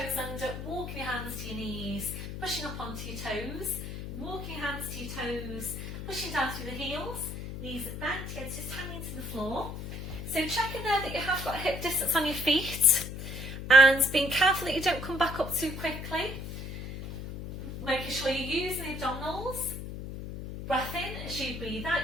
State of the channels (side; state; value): left; noise; hum, 8 dB below the sound